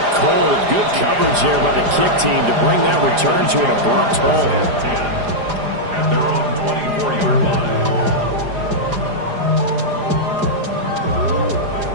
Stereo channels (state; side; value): late; left; 4.9 ms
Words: cold. Good coverage there by the kick team to bring that return to an abrupt halt. At their own 24-yard